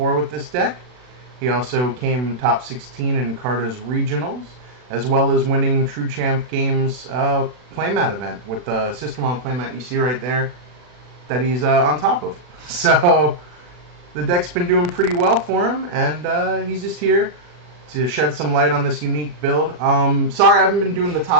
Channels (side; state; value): left; late; 40 ms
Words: with this deck. He also came top 16 in Carta's regionals, as well as winning True Champ Games playmat event with the System on playmat you see right there that he's on top of. So the deck's been doing pretty well for him, and he's just here to shed some light on this unique build. Sorry I haven't been doing the